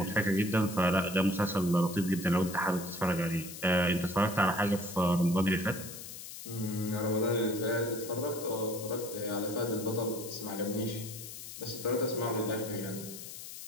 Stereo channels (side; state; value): left; noise; hiss, 11 dB below the sound